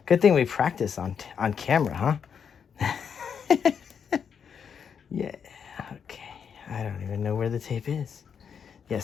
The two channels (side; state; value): right; quieter; 7.1 dB